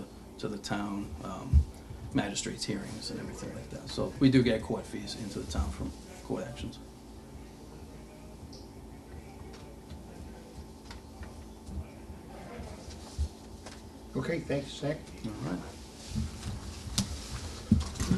the town, magistrates' hearings and everything like that. So we do get court fees into the town from court actions. Okay, thanks, Zach. All right.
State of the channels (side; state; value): both; identical; correlation 1.00